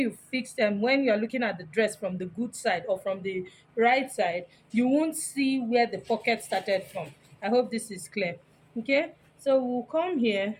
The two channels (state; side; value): identical; both; correlation 1.00